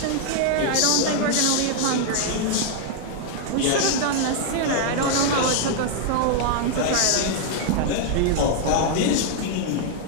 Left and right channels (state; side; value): different; both; correlation -0.01